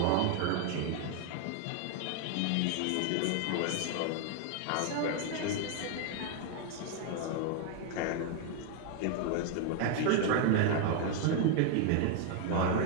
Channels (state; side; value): different; both; correlation 0.00